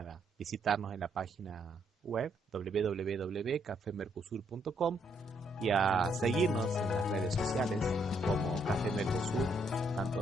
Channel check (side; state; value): both; normal; correlation 0.73